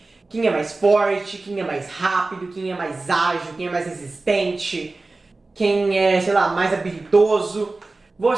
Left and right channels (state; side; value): quieter; left; 3.4 dB